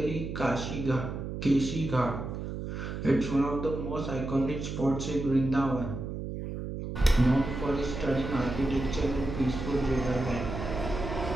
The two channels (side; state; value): right; noise; hum, 6 dB below the sound